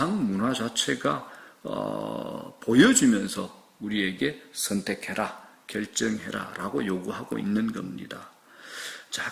문화 자체가 보여주면서 우리에게 선택해라, 결정해라 라고 요구하고 있는 겁니다. 자,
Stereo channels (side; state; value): both; identical; correlation 1.00